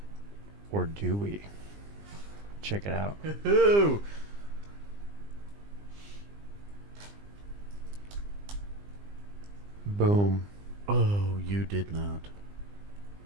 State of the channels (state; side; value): late; left; 20 ms